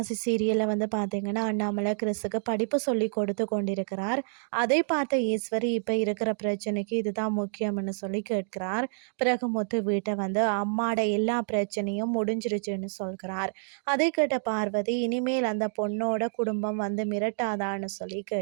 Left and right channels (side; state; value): left; silent; digital silence